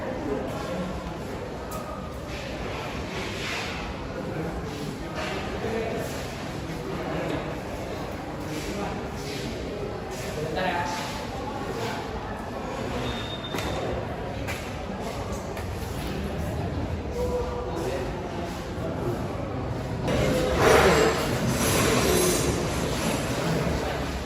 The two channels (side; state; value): both; identical; correlation 1.00